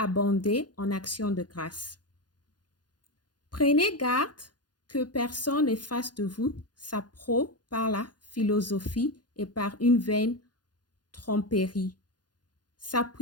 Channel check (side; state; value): right; late; 0.70 ms